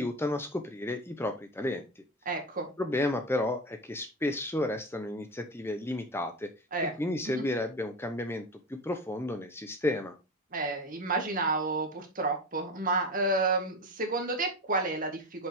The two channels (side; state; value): both; normal; correlation 0.24